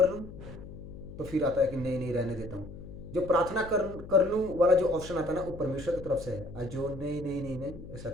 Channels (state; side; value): noise; left; hum, 14 dB below the sound